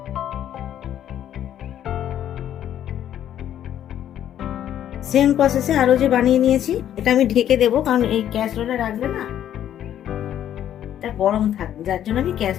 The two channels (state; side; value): quieter; right; 10.8 dB